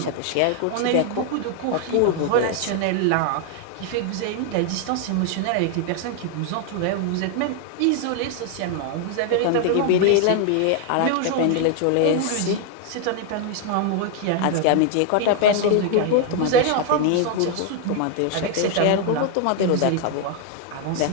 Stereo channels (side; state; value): both; different; correlation 0.00